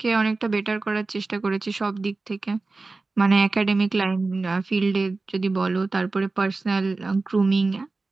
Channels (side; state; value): left; quieter; 3.6 dB